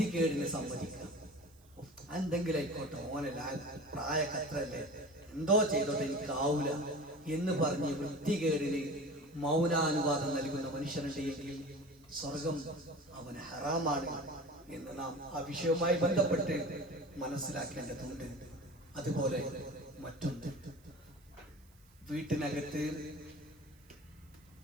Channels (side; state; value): right; noise; hiss, 30 dB below the sound